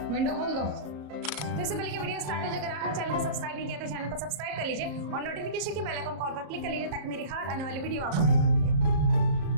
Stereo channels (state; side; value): late; left; 34 ms